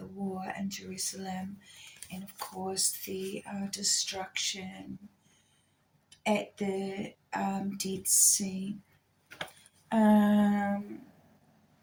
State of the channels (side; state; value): both; identical; correlation 1.00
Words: war in Jerusalem, and of course the destruction at the Dead Sea.